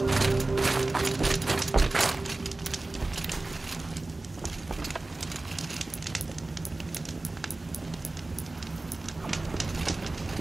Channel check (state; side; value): quieter; left; 3.0 dB